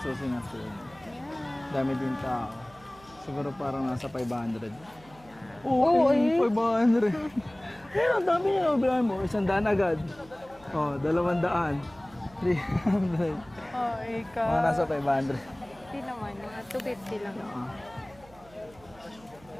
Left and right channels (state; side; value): noise; right; hum, 25 dB below the sound